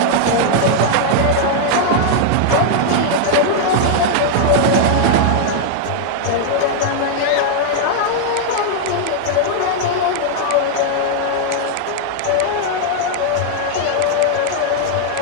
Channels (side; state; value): both; different; correlation -0.01